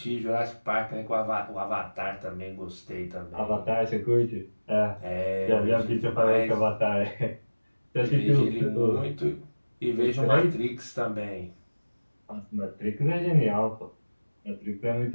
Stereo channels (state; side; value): inverted; both; correlation -1.00